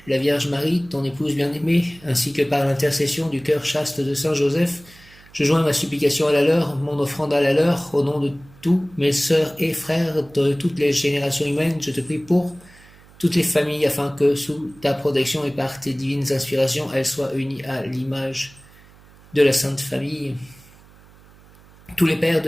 la Vierge Marie, ton épouse bien-aimée, ainsi que par l'intercession du cœur chaste de Saint Joseph, je joins ma supplication à la leur, mon offrande à la leur, au nom de tous mes sœurs et frères de toutes les générations humaines, je te prie pour toutes les familles, afin que, sous ta protection et par tes divines inspirations, elles soient unies à l'image de la Sainte Famille. Tous les pères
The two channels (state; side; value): noise; right; hum, 25 dB below the sound